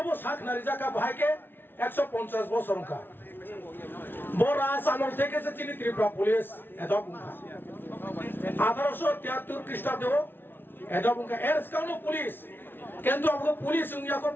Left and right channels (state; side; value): late; right; 0.10 ms